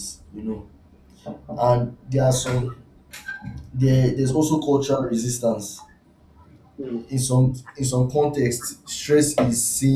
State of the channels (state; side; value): identical; both; correlation 1.00